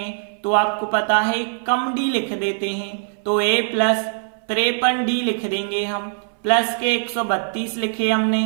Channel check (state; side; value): silent; left; 60 dB below the other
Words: तो आपको पता है कम डी लिख देते हैं। तो a प्लस 53 डी लिख देंगे हम, प्लस के 132 लिखे